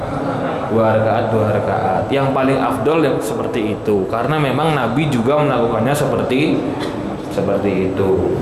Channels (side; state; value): both; identical; correlation 1.00